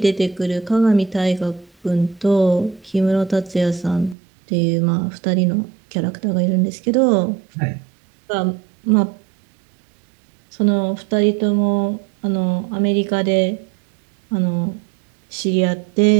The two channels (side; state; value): left; drops out; at 4.2 s